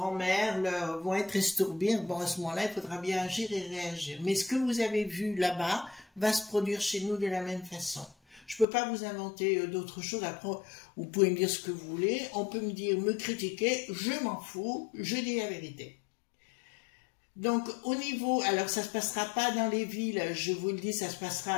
vont être estourbées. Bon, à ce moment-là, il faudra bien agir et réagir. Mais ce que vous avez vu là-bas va se produire chez nous de la même façon. Je peux pas vous inventer d'autres choses. Après, vous pouvez me dire ce que vous voulez. On peut me dire, me critiquer. Je m'en fous. Je dis la vérité. Donc, au niveau, alors ça se passera pas dans les villes, je vous le dis, ça se passera,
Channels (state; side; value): drops out; right; at 8.7 s